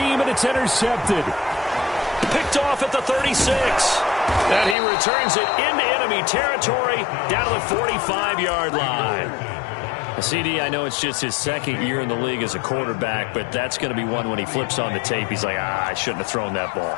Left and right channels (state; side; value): drops out; right; at 4.8 s